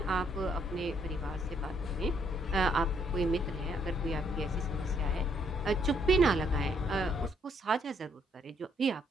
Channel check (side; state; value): both; normal; correlation 0.70